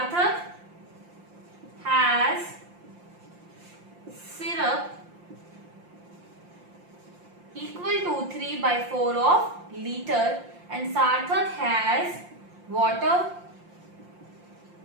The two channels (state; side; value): late; left; 5.7 ms